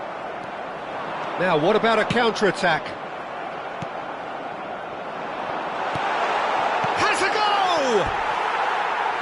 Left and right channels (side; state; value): both; identical; correlation 1.00